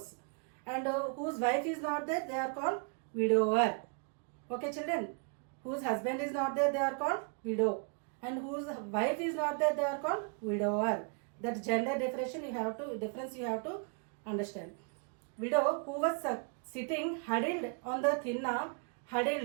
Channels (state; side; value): quieter; left; 39.4 dB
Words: and whose wife is not there, they are called widower. Okay children, whose husband is not there, they are called widow, and whose wife is not there, they are called widower. That gender difference you have to understand. Widow who was sitting huddled on the thinna,